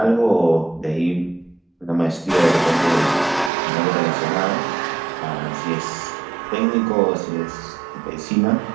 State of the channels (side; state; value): left; drops out; at 3.5 s